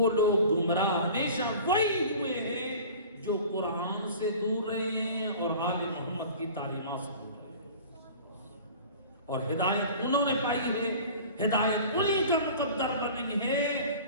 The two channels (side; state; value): both; inverted; correlation -0.41